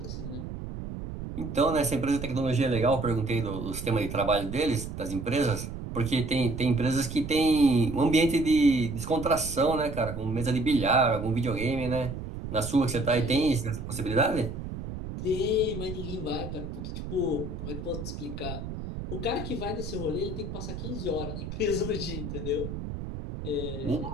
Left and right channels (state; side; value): noise; right; rumble, 7 dB below the sound